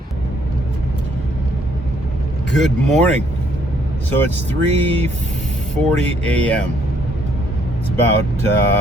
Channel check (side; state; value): both; normal; correlation 0.67